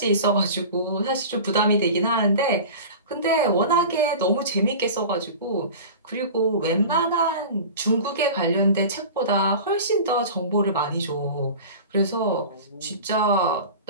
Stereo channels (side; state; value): both; inverted; correlation -0.35